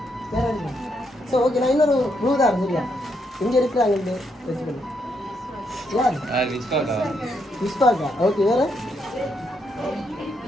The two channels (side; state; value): both; normal; correlation 0.77